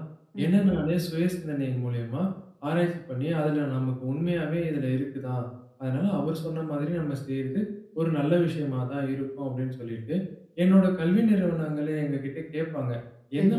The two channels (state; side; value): identical; both; correlation 1.00